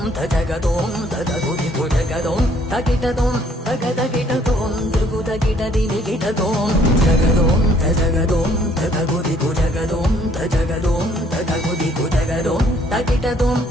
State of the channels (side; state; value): both; normal; correlation 0.62